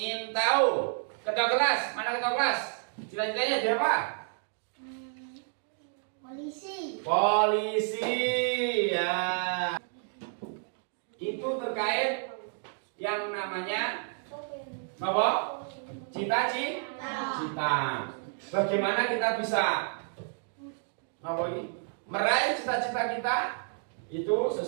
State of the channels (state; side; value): silent; left; 57 dB below the other